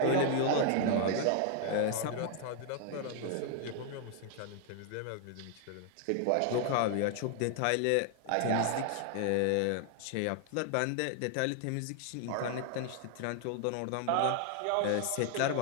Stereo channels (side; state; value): both; different; correlation 0.00